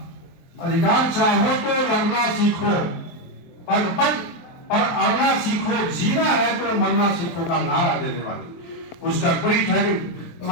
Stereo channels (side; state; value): right; late; 23 ms